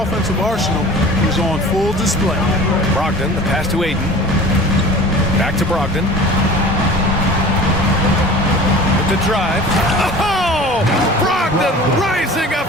arsenal is on full display. Brogdon, the pass to Ayton. Back to Brogdon. With the drive. Oh! Brogdon rising up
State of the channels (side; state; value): both; normal; correlation 0.41